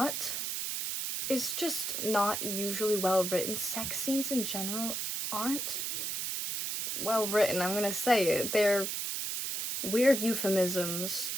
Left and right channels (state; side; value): noise; right; hiss, 2 dB below the sound